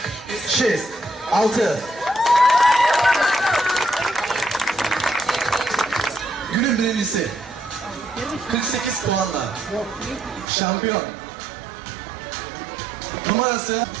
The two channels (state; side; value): drops out; left; at 10.5 s